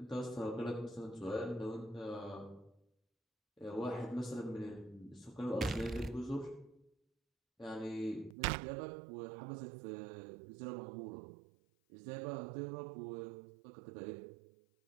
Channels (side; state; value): left; drops out; at 8.3 s